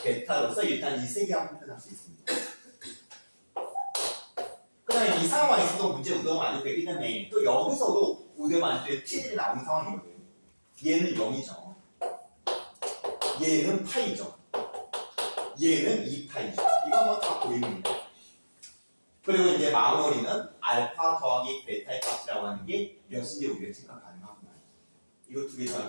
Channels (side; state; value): both; inverted; correlation -1.00